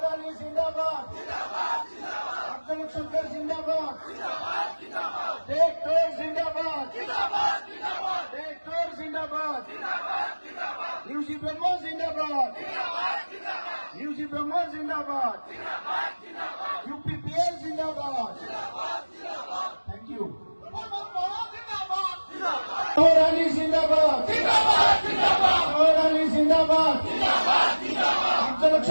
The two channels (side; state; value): both; inverted; correlation -1.00